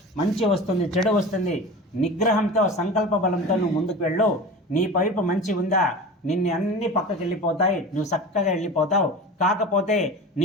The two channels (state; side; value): normal; both; correlation 0.33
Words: మంచి వస్తుంది, చెడు వస్తుంది, నిగ్రహంతో సంకల్ప బలంతో నువ్వు ముందుకు వెళ్ళు. నీ వైపు మంచి ఉందా, నిన్ను అన్ని పక్కకి వెళ్ళిపోతాయి, నువ్వు చక్కగా వెళ్ళిపోతావు. కాకపోతే